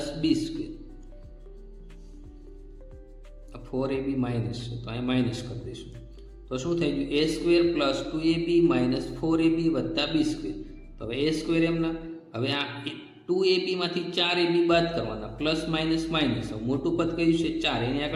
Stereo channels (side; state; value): both; identical; correlation 1.00